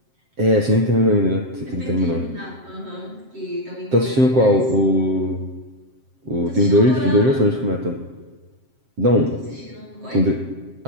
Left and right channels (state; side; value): late; left; 7.6 ms